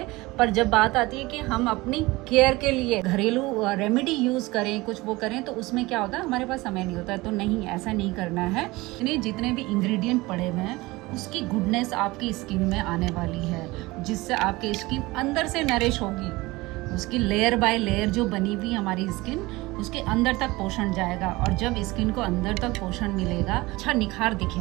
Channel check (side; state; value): left; quieter; 21.2 dB